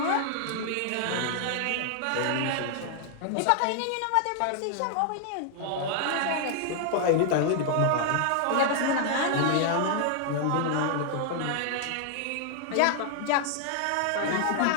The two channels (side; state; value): both; different; correlation 0.00